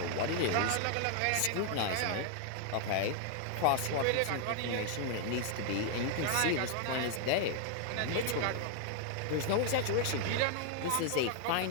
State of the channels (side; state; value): both; different; correlation 0.00